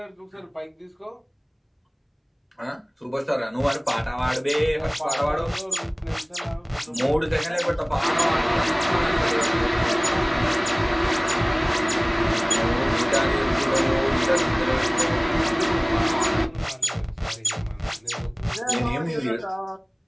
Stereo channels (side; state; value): both; identical; correlation 1.00